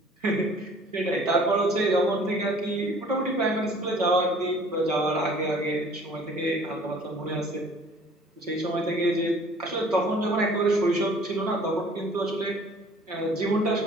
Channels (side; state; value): both; normal; correlation 0.52